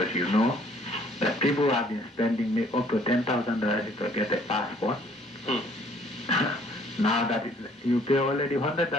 you know that people have been spending up to $10,000 to get a passport. Now that you pay already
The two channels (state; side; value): normal; both; correlation 0.60